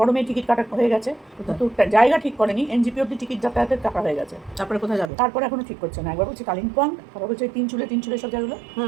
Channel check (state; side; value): drops out; left; at 5.1 s